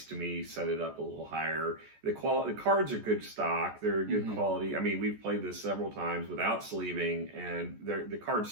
to me set it up a little higher. The cards are good stock. They're good quality. I mean, we've played this several times without sleeving, and the cards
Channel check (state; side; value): late; left; 14 ms